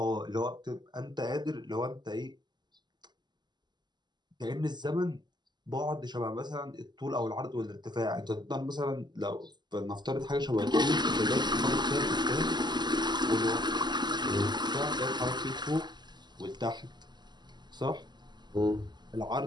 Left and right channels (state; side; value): late; left; 0.21 ms